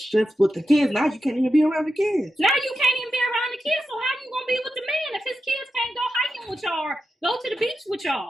with the kids. Now you can't even be around the kids. Now you can't even be around the kids. So how you going to be with the man if his kids can't go hiking with y'all or go to the beach with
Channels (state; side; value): normal; both; correlation 0.89